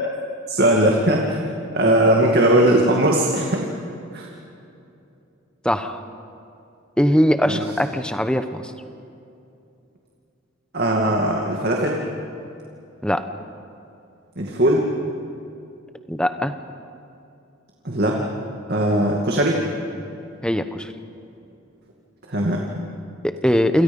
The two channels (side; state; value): both; normal; correlation 0.42